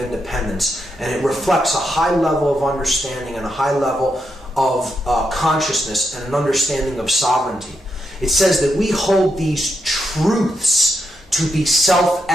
and it reflects a high level of understanding and a high level of consciousness and an understanding of sovereignty. It says that we hold these truths to be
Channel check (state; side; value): normal; both; correlation 0.82